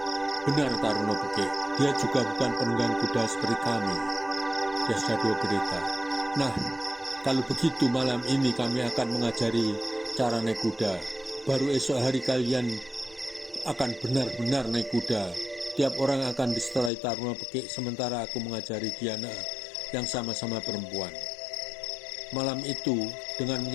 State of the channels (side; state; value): right; drops out; at 16.9 s